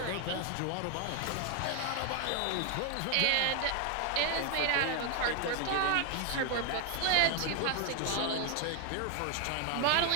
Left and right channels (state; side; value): different; both; correlation 0.00